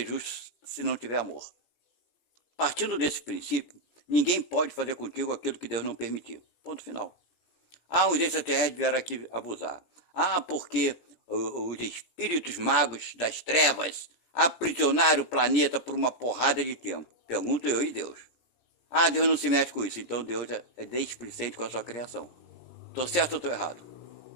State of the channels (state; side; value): late; right; 17 ms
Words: justo se não tiver amor. Partindo desse princípio, ninguém pode fazer contigo aquilo que Deus não permitiu. Ponto final. Os extraterrestres vieram aqui abusar. Porque os espíritos magos das trevas aprisionaram o planeta por uma porrada de tempo. Pergunto eu e Deus. Deus não se mete com isso. Então Deus é displicente com a sua criação. Estou certo ou estou errado?